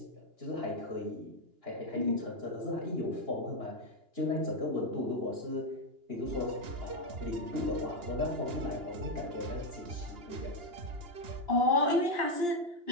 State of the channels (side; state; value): left; late; 2.9 ms